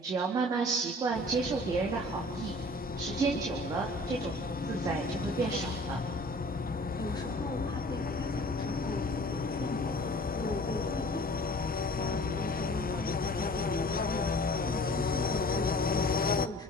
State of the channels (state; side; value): normal; both; correlation 0.47